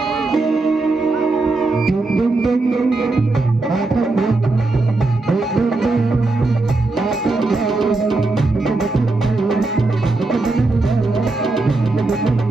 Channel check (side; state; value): left; quieter; 3.3 dB